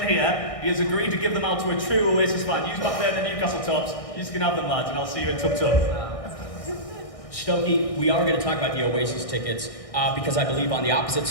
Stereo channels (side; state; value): right; late; 1.6 ms